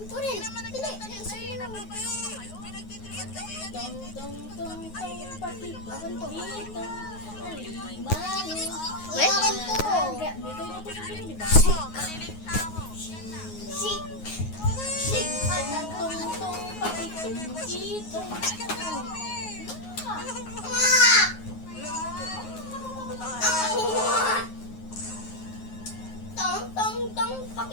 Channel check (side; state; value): right; late; 9.5 ms